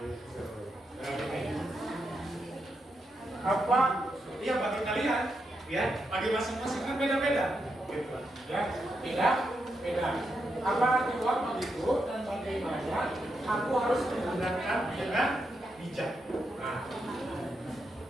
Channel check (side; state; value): both; normal; correlation 0.83